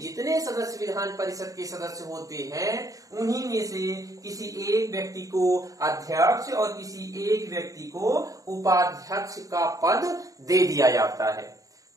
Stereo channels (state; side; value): late; left; 0.16 ms